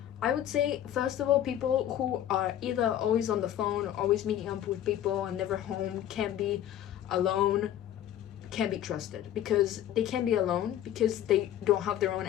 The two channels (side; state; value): right; quieter; 11.4 dB